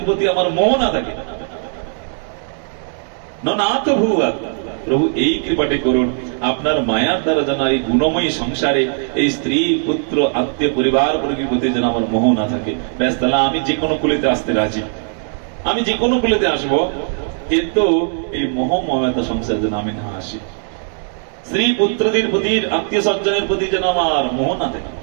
প্রতি আমার মোহ না থাকে। ননাত ভুয়া, প্রভু এই কৃপাটি করুন, আপনার মায়ার দ্বারা যেন এই গুণময়ী সংসারে এই স্ত্রী পুত্র আত্মীয় পরিবার বর্গের প্রতি যেন আমার মোহ না থাকে। ব্যাস, তাহলে আমি যে কোনো কুলেতে আসতে রাজি, আমি যে কোনো কুলেতে আসবো, কিন্তু এই মোহ মমতা সংসার যেন আমি না আসি, স্ত্রী পুত্রদের প্রতি আত্মীয় স্বজনের প্রতি যেন আমার মোহ না থাকে।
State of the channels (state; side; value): silent; left; digital silence